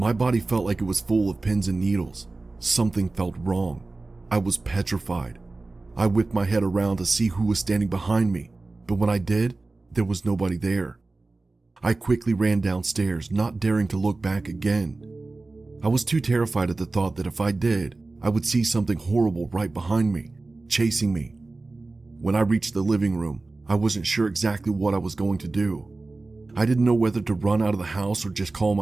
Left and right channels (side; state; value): left; quieter; 3.4 dB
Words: body felt like it was full of pins and needles. Something felt wrong. I was petrified. I whipped my head around to see who was standing behind me, but when I did, there was nobody there. I quickly ran downstairs, not daring to look back again. I was too terrified at the thought that if I did, I would see something horrible right behind me, chasing me. When I reached the living room, I wasn't sure exactly what I was going to do. I didn't know whether to run out of the house or just call